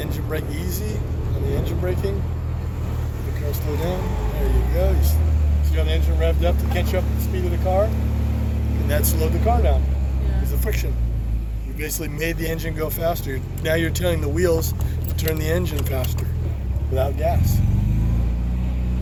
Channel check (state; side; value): identical; both; correlation 1.00